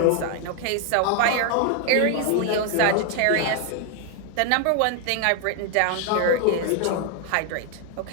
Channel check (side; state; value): both; different; correlation 0.00